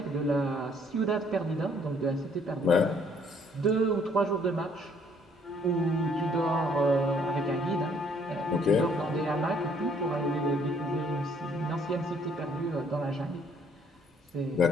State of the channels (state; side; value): normal; both; correlation 0.63